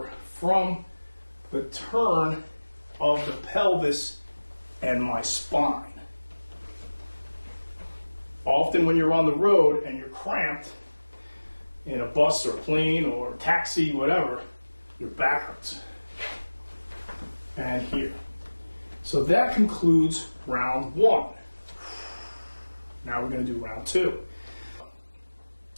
from the turn of the pelvis and my spine. Often when you're on the road and you're cramped in a bus or plane or taxi, whatever, your back hurts. And here. So that concludes round 1. Now we're going to do round 2.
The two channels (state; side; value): inverted; both; correlation -1.00